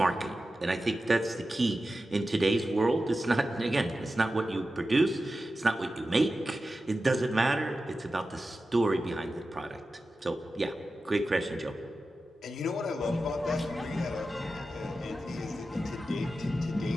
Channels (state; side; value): normal; both; correlation 0.93